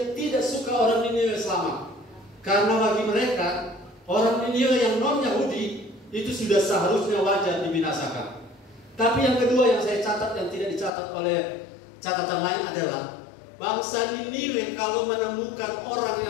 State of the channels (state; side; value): drops out; right; at 10.9 s